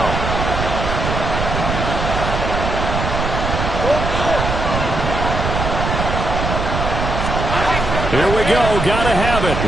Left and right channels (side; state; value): right; noise; rumble, 3 dB below the sound